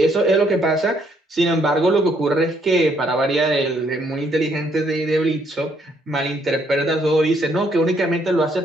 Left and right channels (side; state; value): both; normal; correlation 0.70